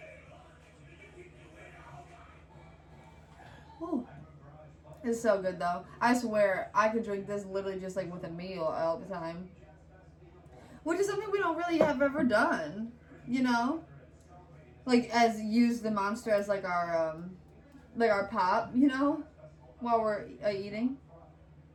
Whew. It's so good though. I swear, I could drink this literally just like with a meal all the time. Which is something we don't really have ever done, you know? Like, as use the Monster as like our pop, you know? While we're eating.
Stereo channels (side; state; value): both; identical; correlation 1.00